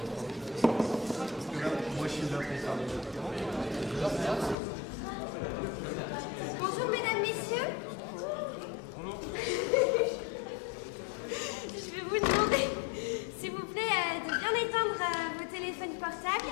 Bonjour mesdames, messieurs. Je vais vous demander, s'il vous plaît, de bien éteindre vos téléphones portables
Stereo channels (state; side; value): drops out; right; at 4.5 s